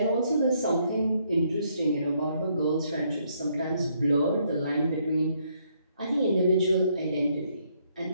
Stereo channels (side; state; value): both; inverted; correlation -0.72